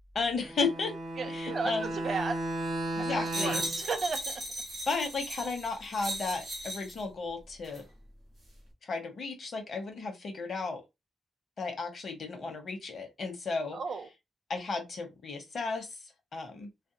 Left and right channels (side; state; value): both; normal; correlation 0.77